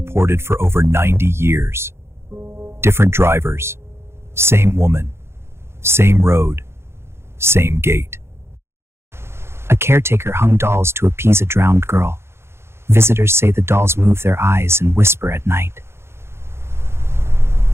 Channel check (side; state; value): left; late; 0.12 ms